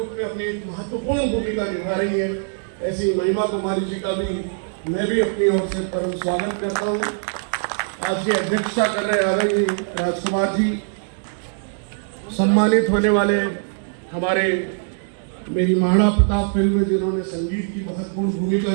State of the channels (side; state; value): left; silent; digital silence